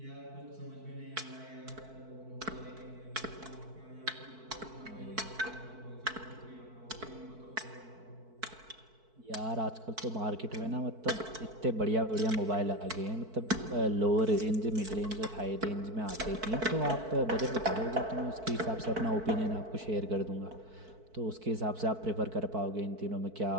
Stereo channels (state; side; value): late; left; 4.6 ms